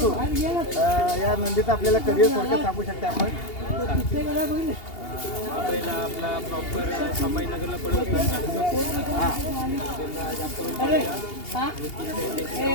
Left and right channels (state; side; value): late; right; 2.8 ms